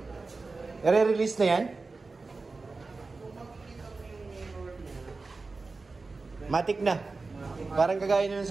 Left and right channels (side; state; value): left; quieter; 3.8 dB